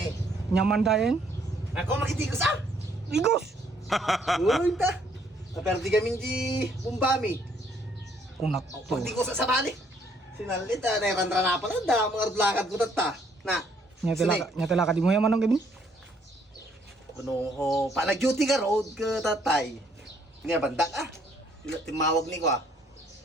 Nyaman dayan? Ako makitigos ah! Igos! Uy, ta! Naperdi kami di Bumbami. Kunak to. Pag di ko sa sabali. Sinalit ah, nairandra na pala. Da, mga lakad ko tata. Na. Nya tala ka di mo yaman ng Kevin? Ano ho, palag-duty ka road ka tatay. Nga bandak ah. Timawag ni ko ah.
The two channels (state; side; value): normal; both; correlation 0.66